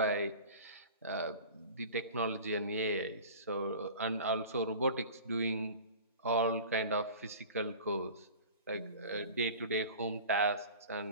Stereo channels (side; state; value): both; inverted; correlation -0.39